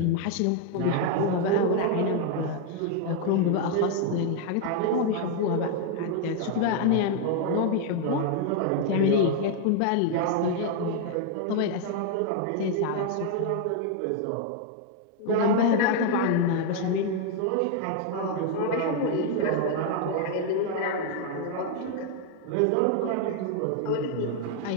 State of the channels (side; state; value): both; different; correlation 0.00